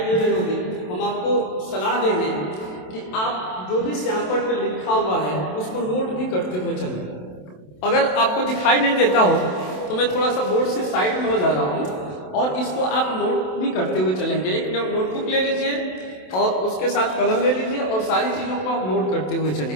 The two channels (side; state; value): right; late; 27 ms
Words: दे रही होगी। हम आपको सलाह देंगे कि आप जो भी सैंपल पे लिखा हुआ है उसको नोट भी करते हुए चलें। अगर आपको दिखाई नहीं देता हो तो मैं थोड़ा सा बोर्ड से साइड में हो जा रहा हूँ और इसको आप नोट भी करते हुए चलेंगे। एक नोटबुक ले लीजिए और उसके साथ कलम ले लीजिए और सारी चीज़ों को आप नोट करते हुए